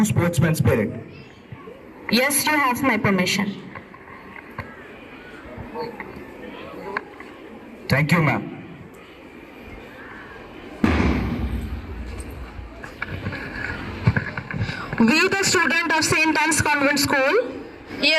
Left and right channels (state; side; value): identical; both; correlation 1.00